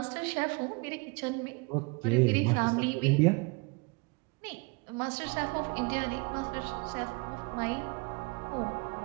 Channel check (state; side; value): quieter; left; 28.9 dB